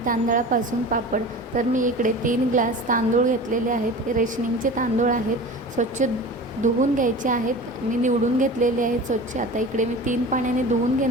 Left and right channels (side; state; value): both; normal; correlation 0.35